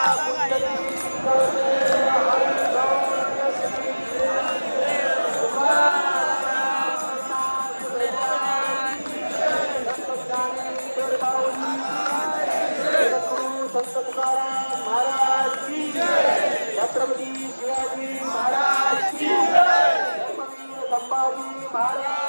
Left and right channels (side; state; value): both; inverted; correlation -1.00